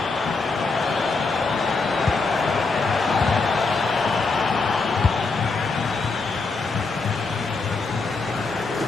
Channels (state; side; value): quieter; right; 4.1 dB